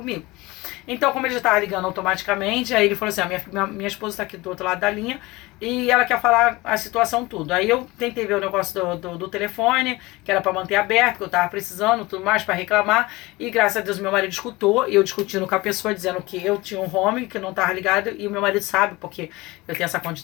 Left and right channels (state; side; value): quieter; right; 21.6 dB